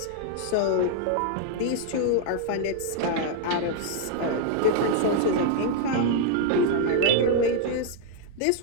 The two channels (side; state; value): both; different; correlation 0.00